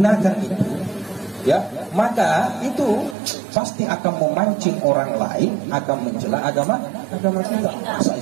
itu. Ya, maka itu pasti akan memancing orang lain akan mencela agama kita. Masa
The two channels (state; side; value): drops out; left; at 3.2 s